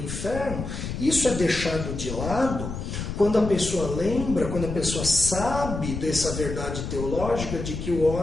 inferno. Isso é deixado de lado quando a pessoa lembra, quando a pessoa sabe dessa verdade teológica de que o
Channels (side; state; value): left; noise; rumble, 6 dB below the sound